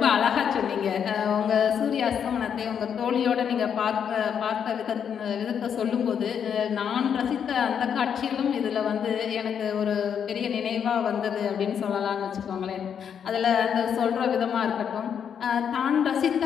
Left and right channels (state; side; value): quieter; right; 7.9 dB